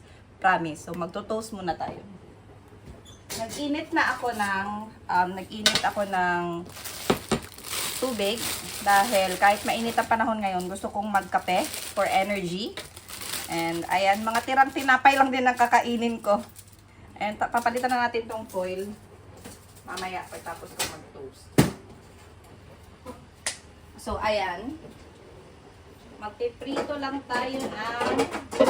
Promise. So magto-toast muna tayo. Nag-init ako ng tubig dahil kahit mainit ang panahon ngayon, gusto kong magkape for energy. And ayan, mga tirang tinapay lang din ang kakainin ko. And papalitan na natin tong foil mamaya pagtapos ko mag-toast. So ayan, magpiprito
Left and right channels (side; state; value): both; identical; correlation 1.00